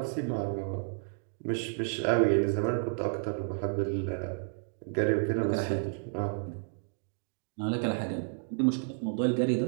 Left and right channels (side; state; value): left; silent; 57 dB below the other